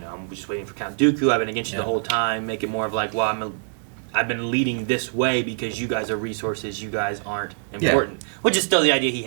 just waiting for Count Dooku. I've been against you the whole time. Make it more of like, I've been leading this way because you guys are resources. You guys aren't important. Which is still the idea he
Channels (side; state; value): left; silent; 58 dB below the other